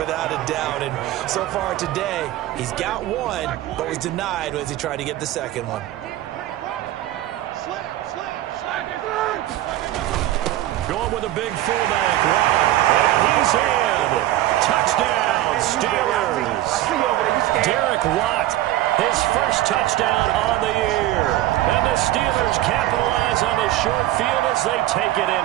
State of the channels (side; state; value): left; quieter; 14.8 dB